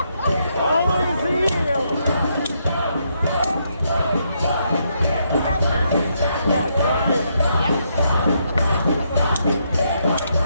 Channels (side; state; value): both; inverted; correlation -0.77